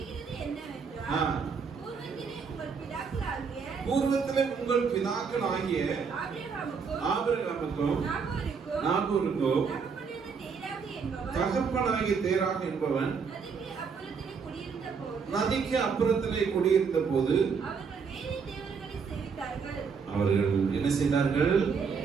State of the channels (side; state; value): left; quieter; 5.7 dB